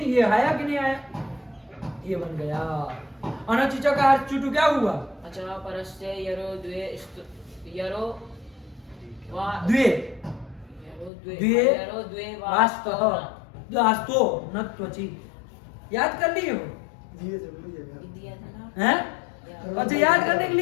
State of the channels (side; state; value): right; drops out; at 11.1 s